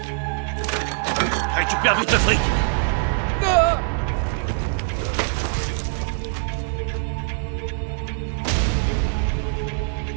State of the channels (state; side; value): silent; left; 63 dB below the other